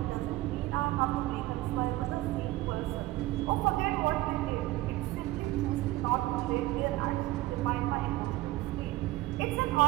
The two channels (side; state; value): left; quieter; 17.6 dB